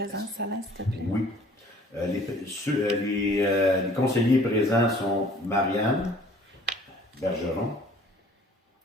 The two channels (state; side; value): normal; both; correlation 0.53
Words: Alain, s'il te plaît? Oui. Les conseillers présents sont Marianne Bergeron,